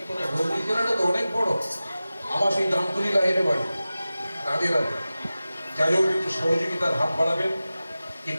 ভৌগোলিক জেলাটা তো অনেক বড়, আমার সেই দামতুলি লাহিরে বাড়ি, রাধে রাধে। যাই হোক, একটু সহযোগিতার হাত বাড়াবেন।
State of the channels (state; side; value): inverted; both; correlation -0.96